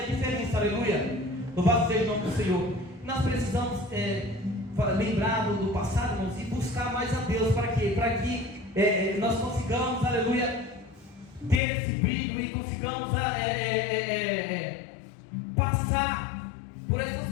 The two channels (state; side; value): drops out; right; at 11.6 s